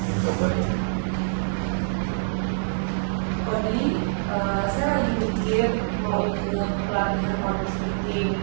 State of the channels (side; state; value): left; silent; digital silence